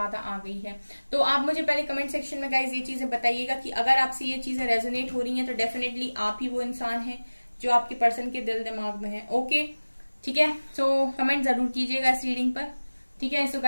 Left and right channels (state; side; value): inverted; both; correlation -1.00